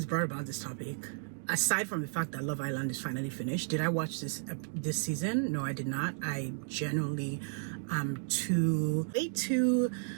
brought about this topic. Aside from the fact that Love Island is finally finished, did I watch this season? No, I did not. I genuinely am way too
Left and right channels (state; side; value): silent; left; digital silence